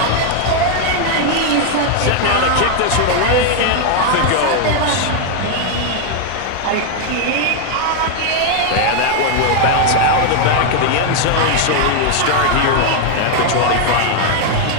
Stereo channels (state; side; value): different; both; correlation 0.00